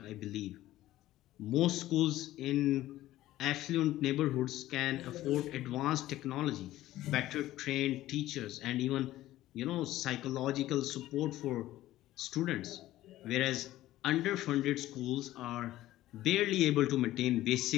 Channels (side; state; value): right; quieter; 15.1 dB